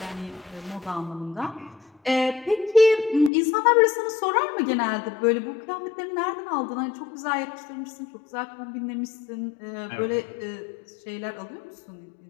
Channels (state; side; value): drops out; right; at 3.3 s